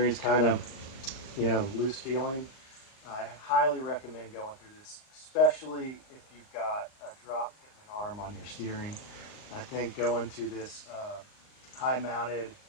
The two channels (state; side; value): late; right; 39 ms